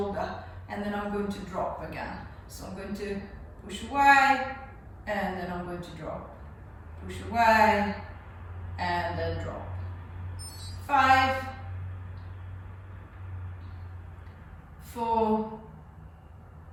and then I'm going to drop again. So I'm going to push away, and then I'm going to drop. Push away, and then drop. 5, 4,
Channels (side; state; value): both; identical; correlation 1.00